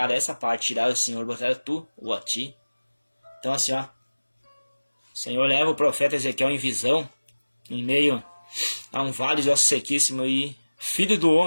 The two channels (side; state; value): both; inverted; correlation -1.00